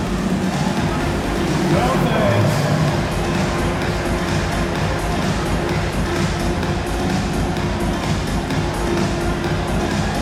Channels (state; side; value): identical; both; correlation 1.00